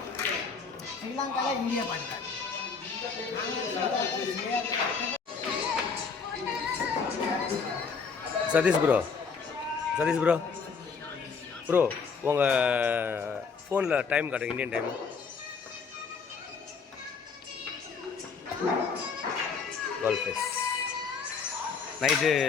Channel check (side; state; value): right; quieter; 5.4 dB